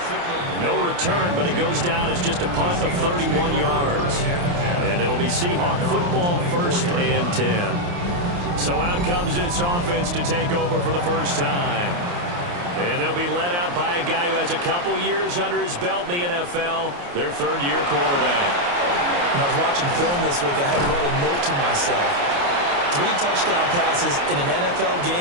No return, but it goes down as just a punt of 31 yards. And it'll be Seahawk football, 1st and 10. So out comes this offense to take over for the first time. And they'll be led out by a guy who has a couple years under his belt in the NFL, their 3rd-year quarterback. When I was watching film this week, I had to write a note to myself. 3 touchdown passes in an NFL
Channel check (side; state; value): left; late; 29 ms